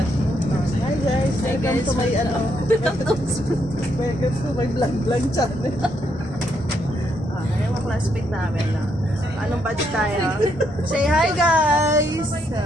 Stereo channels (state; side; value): normal; both; correlation 0.76